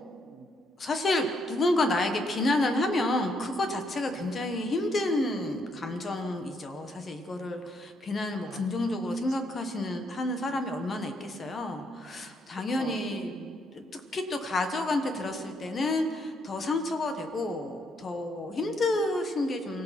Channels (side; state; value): both; normal; correlation 0.74